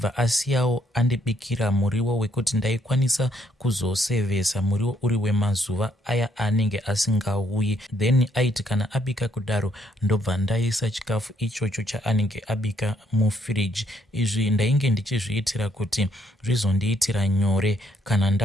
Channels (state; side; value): normal; both; correlation 0.71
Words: asiyawo andibikira muriwo wekuti ndaikwanisa kuzosevesa muriwo uri wemazuva aya anenge asingauyi. Then aiti kana abika kudaro ndobva ndaisa chikafu ichocho chaanenge abika mufiriji. Izvi ndainge ndichizviitira kuti zvizondiitira nyore kana